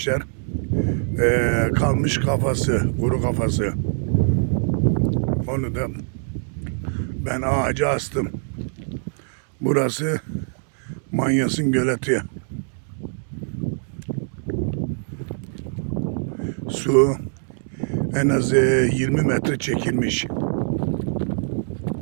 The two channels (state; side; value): silent; left; 61 dB below the other